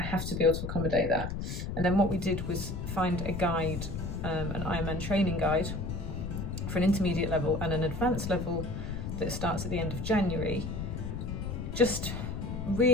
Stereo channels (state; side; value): noise; left; rumble, 4 dB below the sound